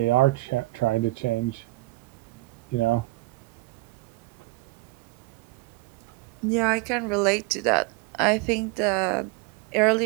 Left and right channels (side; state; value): left; quieter; 21.5 dB